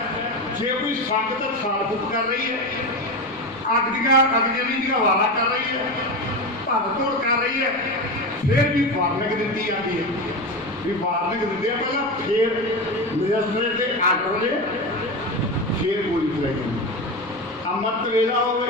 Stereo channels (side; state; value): both; normal; correlation 0.20